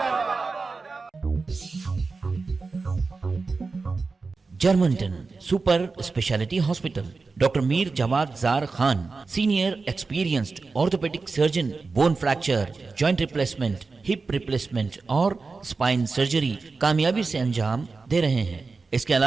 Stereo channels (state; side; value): quieter; left; 4.2 dB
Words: Germanten super speciality hospital, doctor Mir Jawad Zar Khan, senior experienced orthopaedic surgeon, bone fracture, joint replacement, hip replacement और स्पाइन सर्जरी कामयाबी से अंजाम दे रहे हैं। इसके